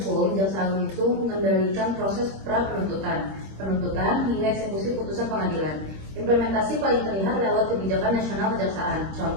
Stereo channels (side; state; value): left; late; 26 ms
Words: Jaksa Agung itu mengendalikan proses pra-penuntutan, penuntutan hingga eksekusi putusan pengadilan. Implementasi paling terlihat lewat kebijakan nasional kejaksaan.